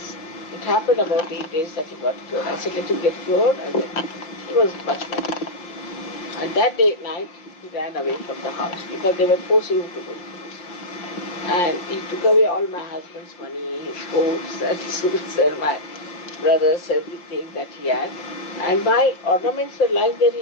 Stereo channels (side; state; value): right; late; 5.7 ms